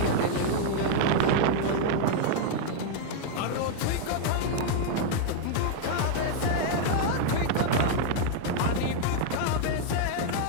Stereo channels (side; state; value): both; different; correlation 0.00